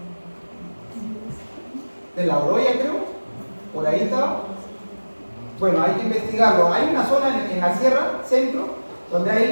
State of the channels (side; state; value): both; inverted; correlation -1.00